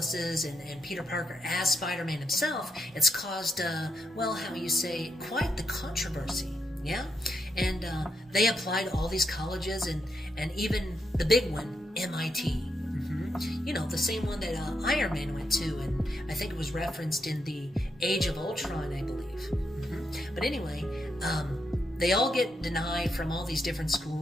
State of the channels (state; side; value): normal; both; correlation 0.81